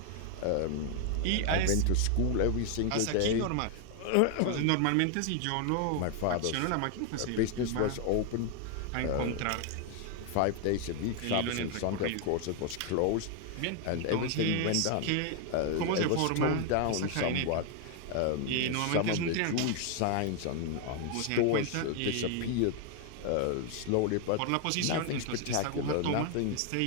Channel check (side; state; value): both; different; correlation 0.01